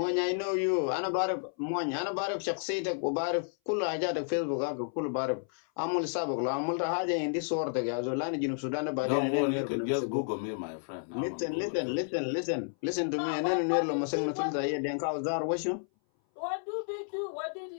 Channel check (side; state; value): right; silent; 57 dB below the other